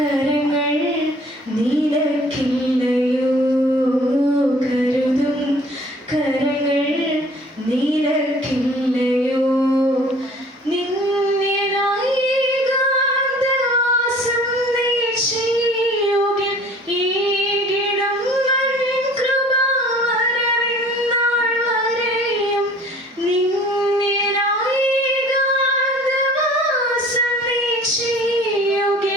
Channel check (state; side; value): normal; both; correlation 0.50